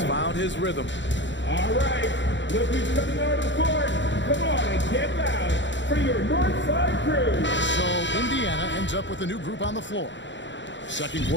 found his rhythm. All right, look who's coming out of the court. Come on and get loud for your Northside Crew. So Indiana ends up with a new group on the floor. Second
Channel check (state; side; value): late; right; 0.53 ms